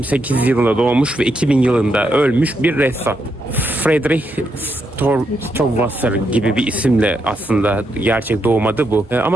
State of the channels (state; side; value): normal; both; correlation 0.80